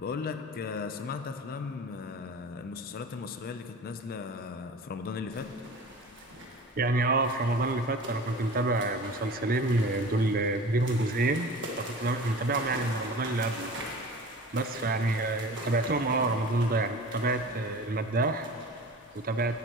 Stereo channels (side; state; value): both; normal; correlation 0.38